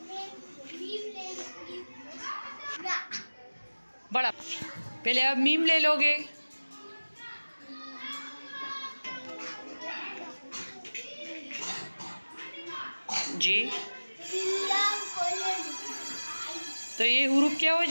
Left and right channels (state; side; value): inverted; both; correlation -1.00